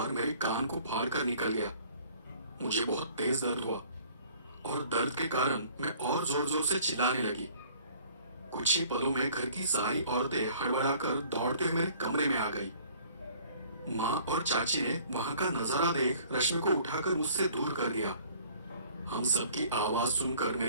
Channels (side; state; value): both; inverted; correlation -0.54